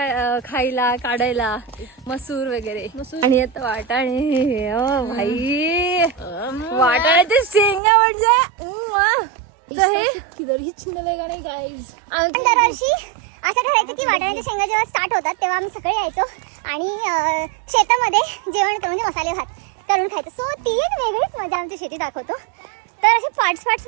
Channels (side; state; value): left; drops out; at 7.8 s